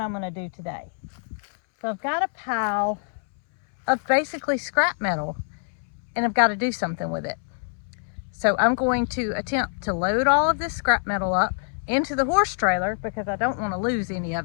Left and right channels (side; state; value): right; silent; 62 dB below the other